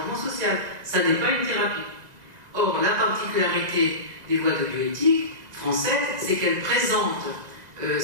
social, ça n'est pas une thérapie. Or, la particularité des lois de bioéthique françaises, c'est qu'elles présentent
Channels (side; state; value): left; late; 2.0 ms